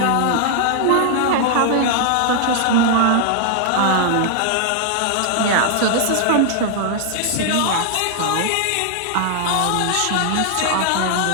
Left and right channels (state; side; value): different; both; correlation 0.00